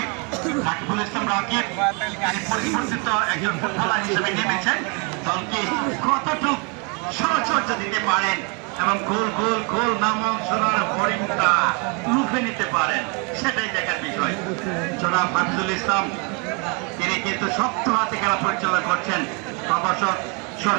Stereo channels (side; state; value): left; quieter; 33.6 dB